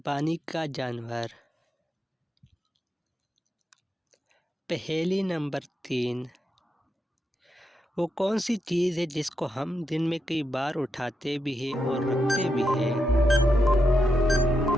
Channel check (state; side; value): normal; both; correlation 0.84